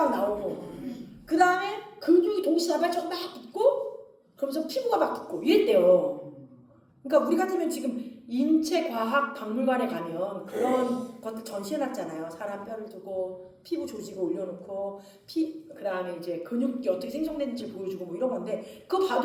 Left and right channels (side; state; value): both; identical; correlation 1.00